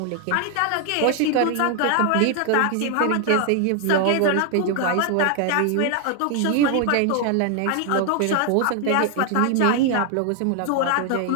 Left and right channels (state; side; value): different; both; correlation 0.00